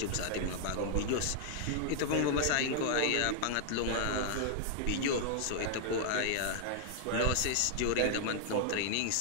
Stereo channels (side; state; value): both; different; correlation 0.00